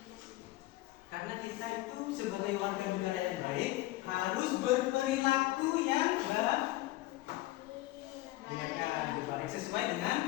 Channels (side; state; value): right; quieter; 17.8 dB